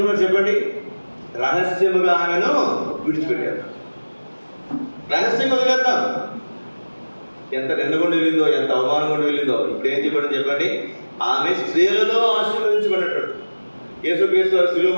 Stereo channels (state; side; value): inverted; both; correlation -1.00